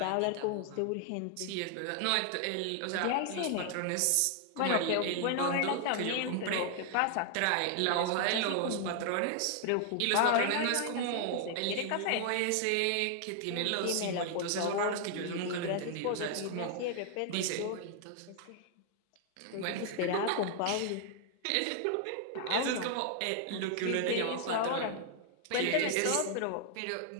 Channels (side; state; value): both; different; correlation 0.00